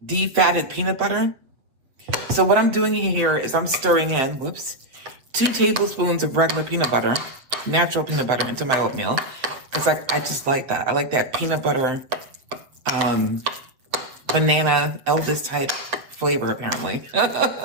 defatted peanut butter. So what I'm doing here is I'm stirring in, 2 tablespoons of regular peanut butter, natural peanut butter into my oatmeal because I just like that. I like that peanut butter, banana Elvis type flavor apparently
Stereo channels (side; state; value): left; late; 7.6 ms